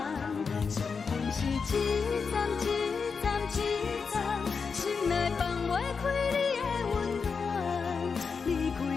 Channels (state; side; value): quieter; right; 5.4 dB